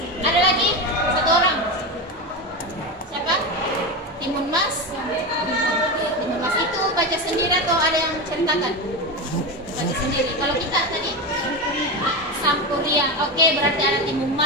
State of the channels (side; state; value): both; normal; correlation 0.18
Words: Ada lagi? Satu orang. Siapa? Timun Mas. Timun Mas itu baca sendiri atau ada yang ceritakan? Baca sendiri. Kalau kita tadi Sampuriang. Oke, berarti ada Timun